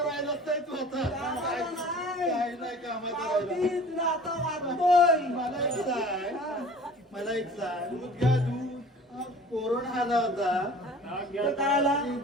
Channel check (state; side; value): normal; both; correlation 0.45